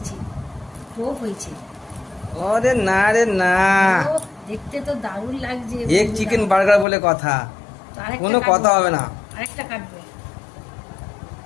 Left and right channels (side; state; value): right; drops out; at 6.9 s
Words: টোপ হয়েছে। আরে না রে না, দেখতে তো দারুণ লাগছে। এগ চিকেন বার্গার বলে কথা, কোনো কথা হবে না। আরেকটা কাটবো,